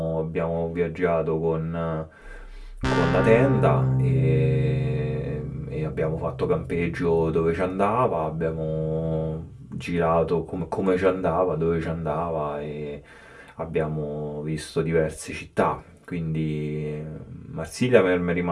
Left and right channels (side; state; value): both; identical; correlation 1.00